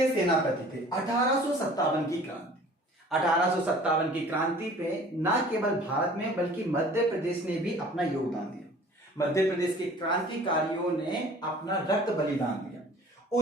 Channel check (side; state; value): both; normal; correlation 0.49